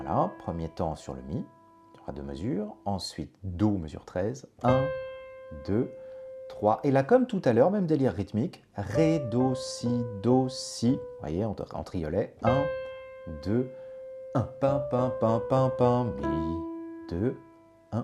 premier temps sur le Mi, il y aura 2 mesures. Ensuite, Do, mesure 13, 1, 2, 3. Et là, comme tout à l'heure, même délire rythmique, Ré, Do, Si. Vous voyez, en triolet. 1, 2, 1. Pam, pam, pam, pam, pam, Mi, 2,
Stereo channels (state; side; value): identical; both; correlation 1.00